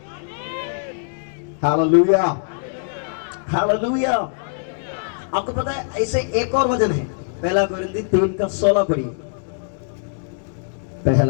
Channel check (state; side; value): silent; right; digital silence